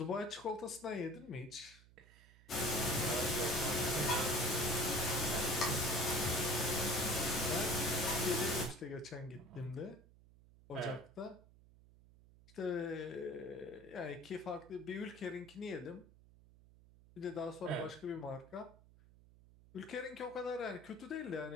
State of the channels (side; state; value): right; noise; hum, 24 dB below the sound